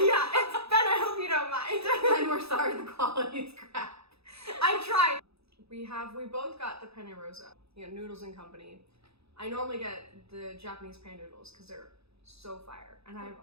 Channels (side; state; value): left; late; 0.78 ms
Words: Ben, I hope you don't mind. Ben, we're sorry the quality is crap. I tried. We both got the penne rosa, noodles and company. I normally get the Japanese pan noodles because they're so fire. And